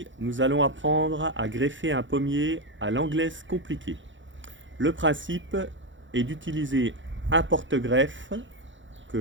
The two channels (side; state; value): left; late; 0.55 ms